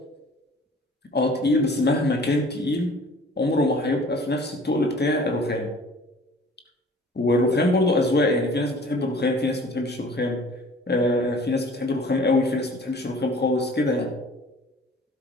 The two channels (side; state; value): both; normal; correlation 0.49